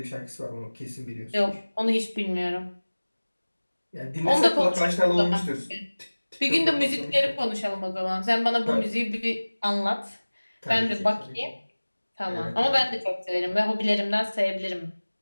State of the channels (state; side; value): inverted; both; correlation -1.00